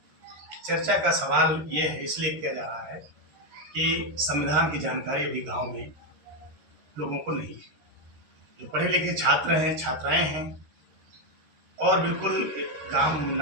चर्चा का सवाल ये है, इसलिए किया जा रहा है कि संविधान की जानकारी अभी गांव में लोगों को नहीं है। जो पढ़े लिखे छात्र हैं, छात्राएं हैं और बिल्कुल गांव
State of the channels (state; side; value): late; left; 13 ms